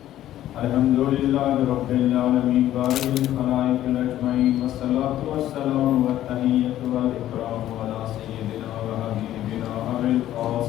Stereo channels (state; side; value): quieter; right; 12.9 dB